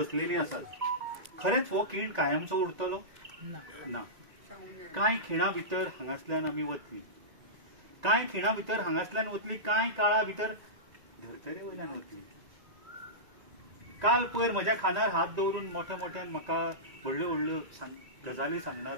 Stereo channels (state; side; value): late; left; 1.9 ms